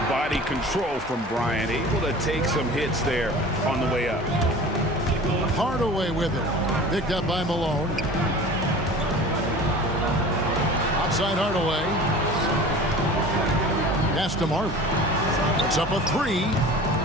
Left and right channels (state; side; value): normal; both; correlation 0.40